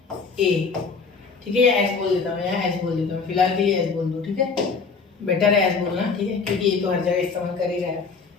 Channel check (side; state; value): right; quieter; 4.9 dB